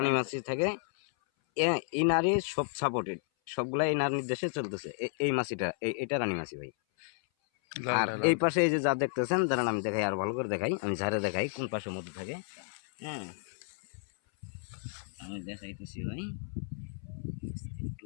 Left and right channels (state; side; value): silent; right; 56 dB below the other